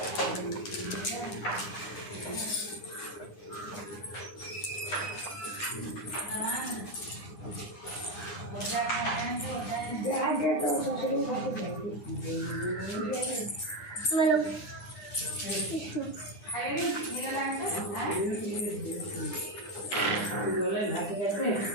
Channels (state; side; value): late; right; 9.7 ms